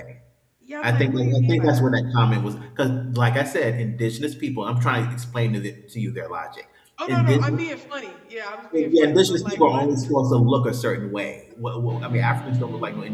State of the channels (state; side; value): identical; both; correlation 1.00